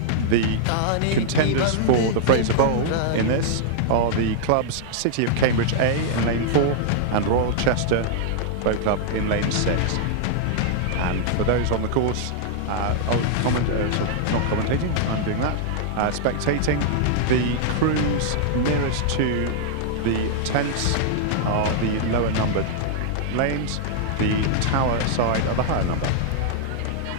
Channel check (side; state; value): both; different; correlation -0.01